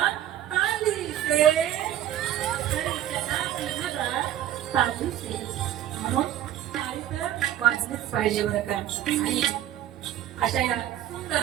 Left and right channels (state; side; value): quieter; left; 12.1 dB